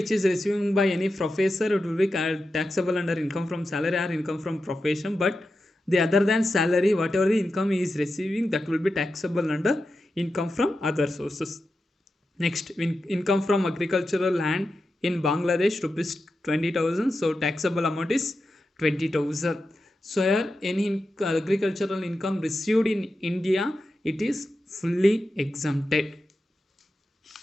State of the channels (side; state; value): both; normal; correlation 0.90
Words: is receiving by any professor, it will be taxable under income from salary or income from profession. But the other than salary, whatever the income he is receiving, that will be taxable under income from other sources. Next, income from agricultural land in Bangladesh rupees 20,000. So taxable amount is 20,000. So here any agricultural income received in India, it is fully exempted.